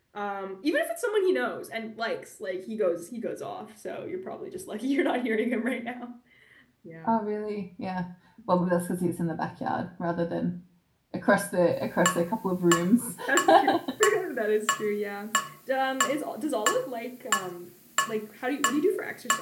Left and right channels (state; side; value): identical; both; correlation 1.00